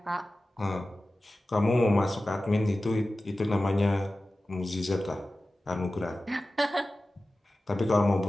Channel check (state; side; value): normal; both; correlation 0.95